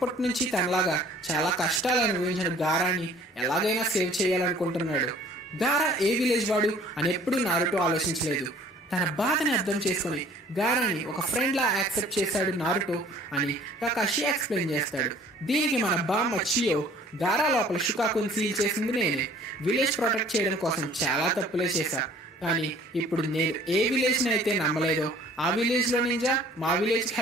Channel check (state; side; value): normal; both; correlation 0.53